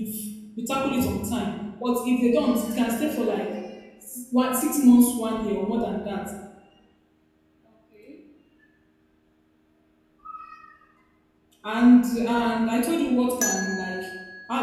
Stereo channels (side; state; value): both; identical; correlation 1.00